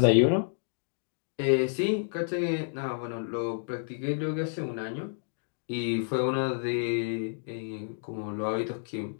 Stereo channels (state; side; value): silent; right; digital silence